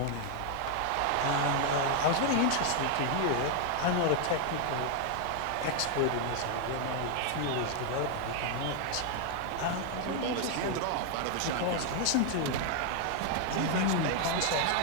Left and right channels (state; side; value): different; both; correlation 0.00